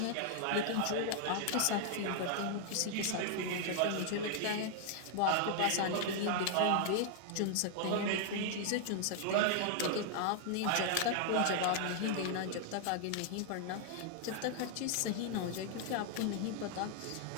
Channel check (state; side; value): different; both; correlation 0.00